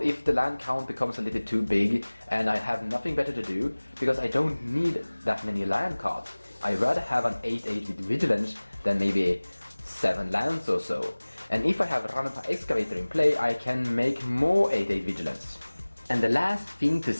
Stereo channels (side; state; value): both; inverted; correlation -1.00